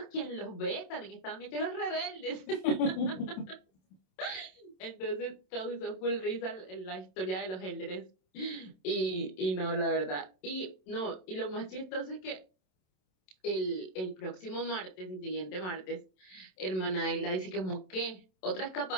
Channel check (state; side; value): late; right; 27 ms